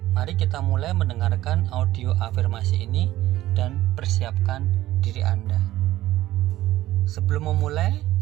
mari kita mulai mendengarkan audio afirmasi ini dan persiapkan diri Anda. Sebelum memulai,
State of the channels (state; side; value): quieter; left; 15.1 dB